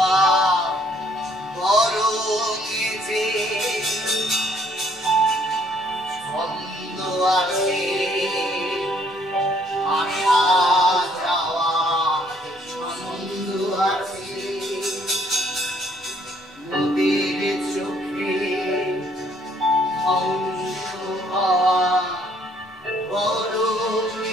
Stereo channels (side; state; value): both; normal; correlation 0.65